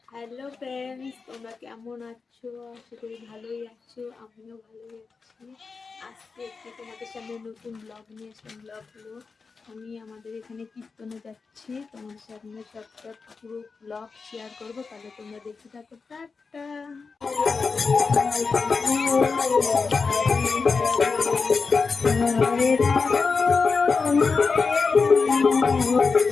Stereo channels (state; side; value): quieter; right; 4.7 dB